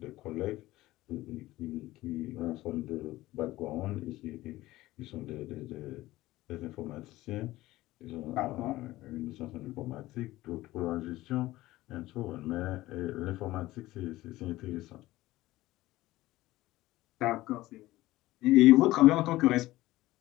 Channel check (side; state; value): right; quieter; 17.3 dB